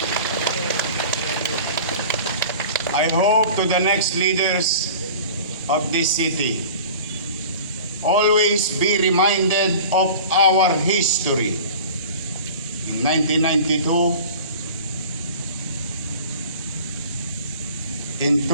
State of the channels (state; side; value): inverted; both; correlation -0.41